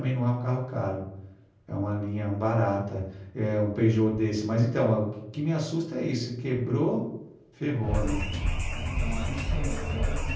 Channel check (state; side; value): identical; both; correlation 1.00